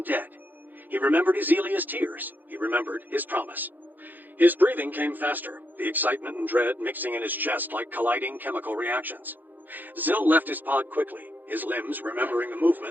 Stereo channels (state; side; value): late; left; 0.086 ms